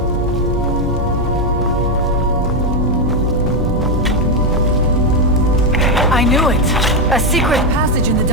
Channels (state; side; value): normal; both; correlation 0.05